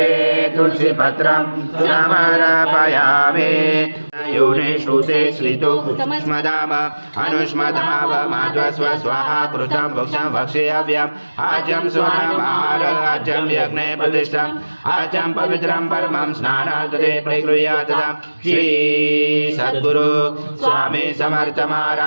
तुलसी पत्रं समर्पयामि। योने श्रुते श्रितो स्मदाम अनुष्मदाव माध्वस्व स्वाहा कृतं भक्षं भक्षेयव्यम् आजं स्वनमार आजं यज्ञे प्रतिष्ठम् आजं पवित्रं परमं स्नानार्थे प्रगृह्यातम्। श्री सद्गुरु स्वामी समर्थ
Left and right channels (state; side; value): inverted; both; correlation -1.00